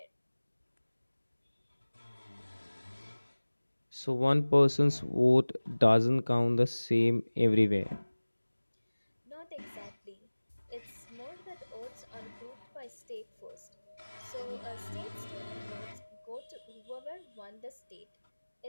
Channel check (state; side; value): inverted; both; correlation -1.00